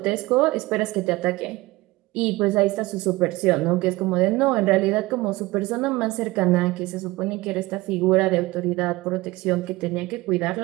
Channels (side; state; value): left; quieter; 20.4 dB